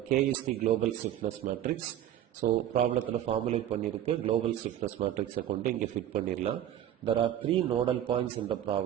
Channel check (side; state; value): left; quieter; 11.5 dB